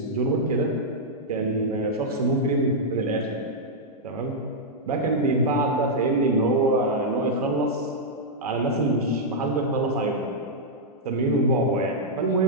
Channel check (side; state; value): both; normal; correlation -0.06